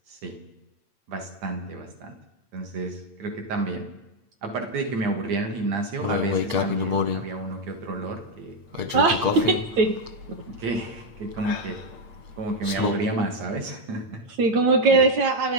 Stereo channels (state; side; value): late; left; 8.8 ms